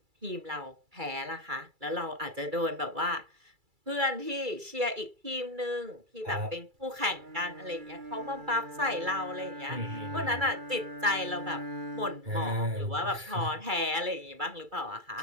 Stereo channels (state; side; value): late; left; 2.3 ms